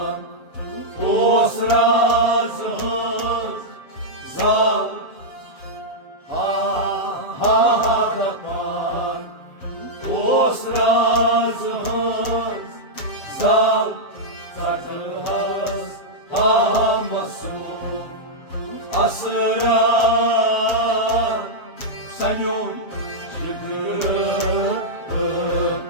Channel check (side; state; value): right; late; 7.2 ms